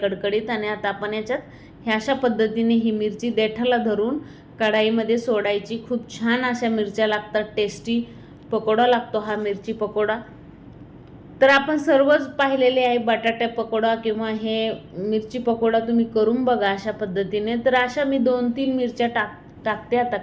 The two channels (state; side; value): identical; both; correlation 1.00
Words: आणि आता आपण याच्यात ह्या अशा पद्धतीने ही मिरची देठाला धरून कढाईमध्ये सोडायची. खूप छान अशा मिरच्या लागतात, टेस्टी पकोडा लागतो हा मिरची पकोडा. तर आपण सर्वच पाहिलेले आहे बटाटा पकोडा किंवा हे मिरची पकोडा, तुम्ही करून बघा अशा पद्धतीने. तर अशा मी 2-3 मिरच्या टाकते आता